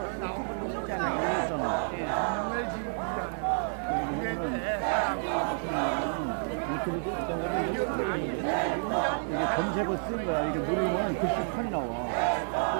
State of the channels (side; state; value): left; silent; digital silence